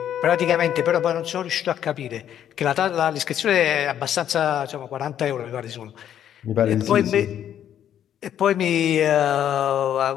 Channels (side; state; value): right; quieter; 10.2 dB